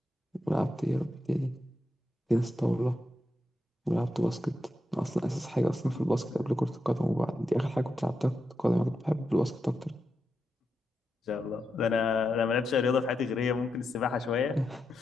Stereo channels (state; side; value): normal; both; correlation 0.86